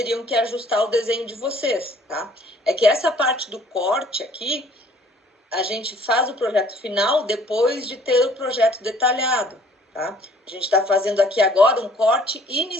que ajustar o desenho de vocês, tá? É que essa parte do corte aqui, a gente faz o projeto final depois de ter o projeto detalhado, tá? A gente está fazendo aqui agora um corte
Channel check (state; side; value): normal; both; correlation 0.57